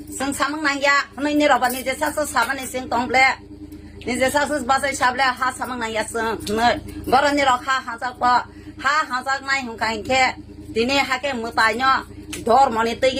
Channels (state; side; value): identical; both; correlation 1.00